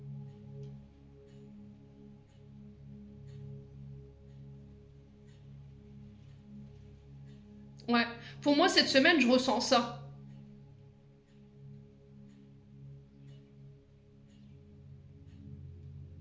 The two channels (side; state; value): both; identical; correlation 1.00